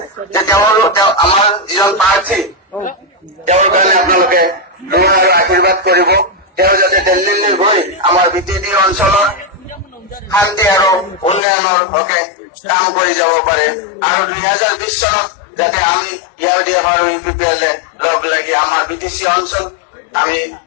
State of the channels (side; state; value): right; drops out; at 11.4 s